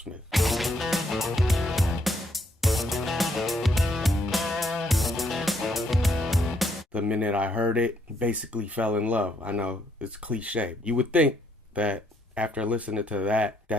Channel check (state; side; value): normal; both; correlation 0.71